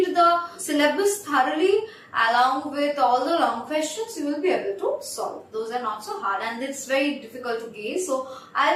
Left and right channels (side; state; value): both; identical; correlation 1.00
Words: the syllabus thoroughly along with all the long questions, you will be able to solve. Those are not so hard and it's very difficult to gauge, so